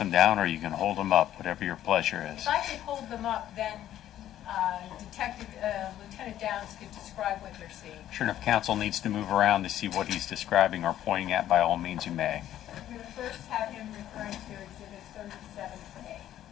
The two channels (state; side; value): quieter; right; 12.1 dB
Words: down, or you can hold them up, whatever your pleasure is. If I could hold them up, then Lieutenant Downs could describe what they're seeing. Sure, and if counsel needs to move around to see what he's describing or pointing at, by all means you may. I'm going to first have him referring to Exhibit 37A.